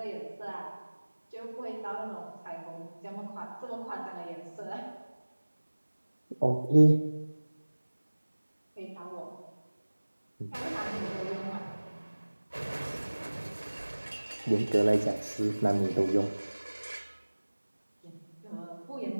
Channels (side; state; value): both; inverted; correlation -1.00